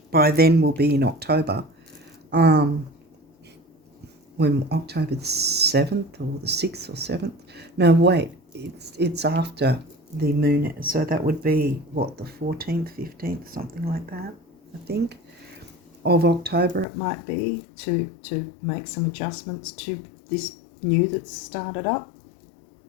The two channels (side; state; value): right; drops out; at 16.9 s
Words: by then will be in October. When October the 7th or the 6th or 7th. No, wait, it's after the moon, so that would be what, the 14th, 15th, something like that, I think, of October it might be, to make some adjustments to this new that's started up.